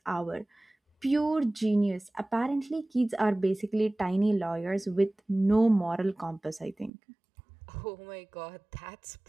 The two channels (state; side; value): drops out; left; at 6.9 s